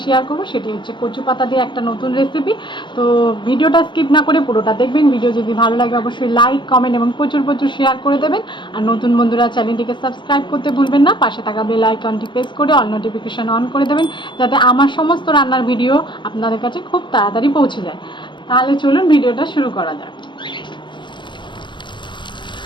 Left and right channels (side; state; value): right; late; 0.23 ms